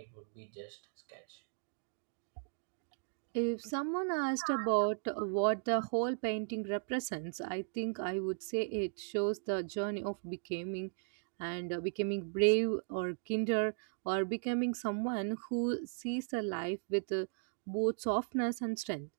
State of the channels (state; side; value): silent; left; digital silence